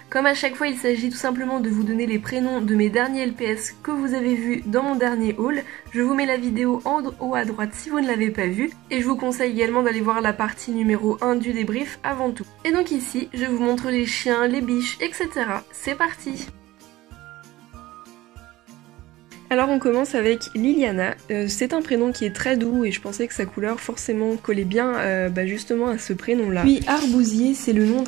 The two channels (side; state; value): left; quieter; 17.5 dB